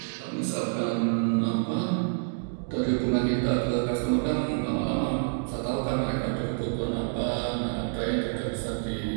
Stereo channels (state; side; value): silent; left; digital silence